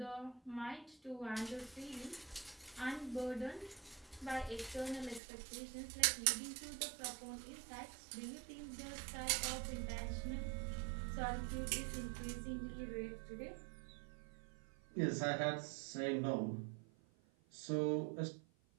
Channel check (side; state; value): left; drops out; at 5.2 s